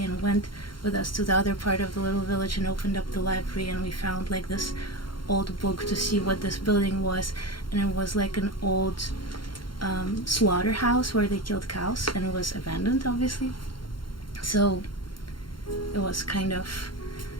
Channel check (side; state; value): right; late; 0.73 ms